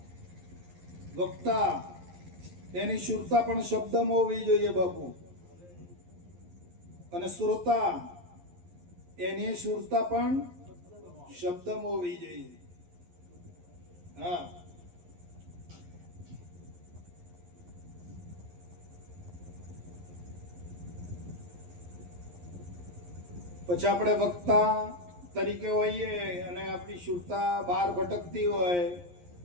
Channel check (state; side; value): late; left; 11 ms